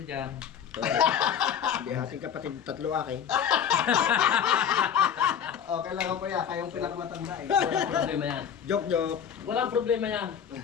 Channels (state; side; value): quieter; right; 8.4 dB